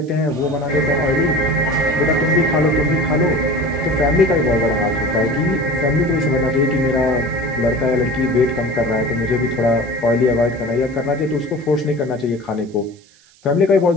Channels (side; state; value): right; noise; hiss, 29 dB below the sound